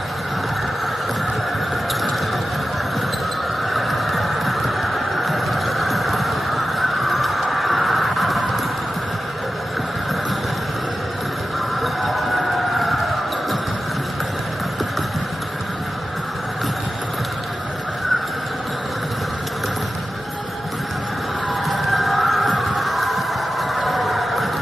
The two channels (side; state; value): both; normal; correlation 0.93